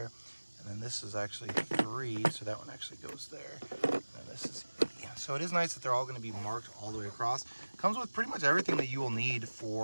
and then this is actually 3, so that one actually goes there, and then this is 8. So it is nice that they're all going to be marked all the way across. Comes with pretty much everything that you will need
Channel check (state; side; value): inverted; both; correlation -1.00